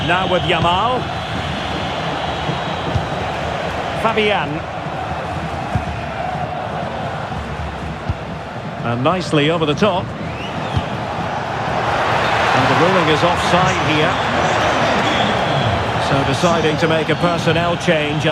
Now with Yamal. Fabian. And nicely over the top. And the ruling is offside here. So deciding to make a personnel change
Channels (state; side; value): identical; both; correlation 1.00